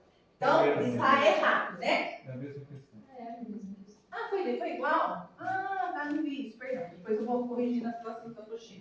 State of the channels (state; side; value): identical; both; correlation 1.00